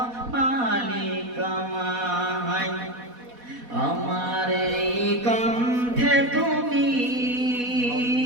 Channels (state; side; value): late; left; 4.1 ms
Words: মালিক আমায়। আমার এই কণ্ঠে তুমি